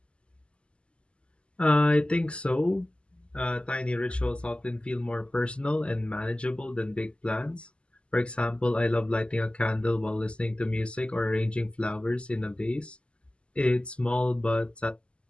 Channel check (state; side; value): late; right; 0.053 ms